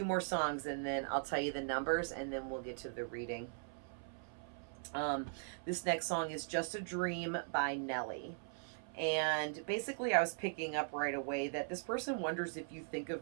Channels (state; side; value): silent; left; 51 dB below the other